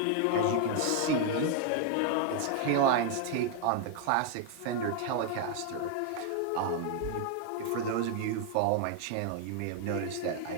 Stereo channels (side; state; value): both; different; correlation 0.00